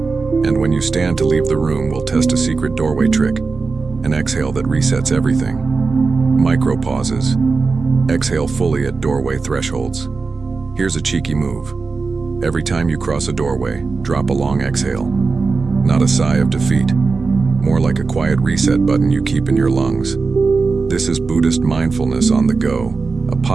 when you stand to leave the room, we'll test a secret doorway trick, an exhale that resets everything. Micro pauses. Exhale fully at doorway thresholds. Here's a cheeky move. Every time you cross a doorway, drop a long exhale. Not a sigh of defeat, more like a quiet reset button you keep in your lungs. This is Buddhist mindfulness on the go, a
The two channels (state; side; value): quieter; left; 4.3 dB